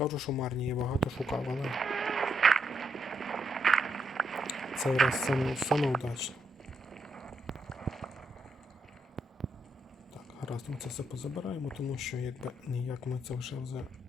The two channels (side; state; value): both; normal; correlation 0.78